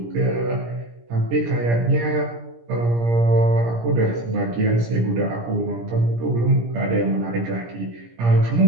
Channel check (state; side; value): late; left; 17 ms